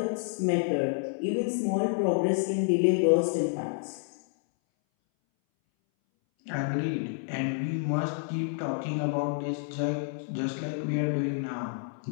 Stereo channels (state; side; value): silent; right; 59 dB below the other